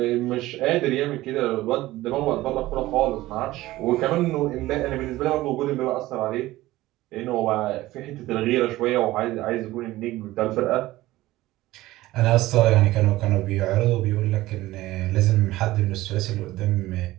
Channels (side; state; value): left; quieter; 17.2 dB